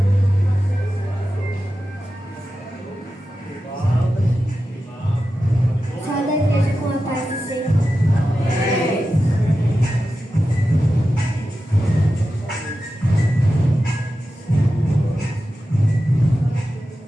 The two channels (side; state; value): both; normal; correlation 0.92